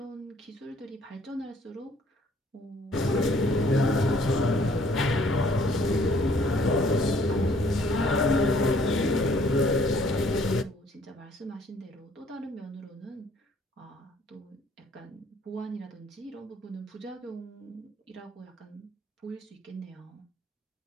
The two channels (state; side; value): normal; both; correlation 0.60